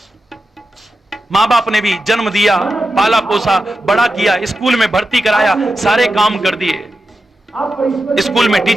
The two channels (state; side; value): normal; both; correlation 0.90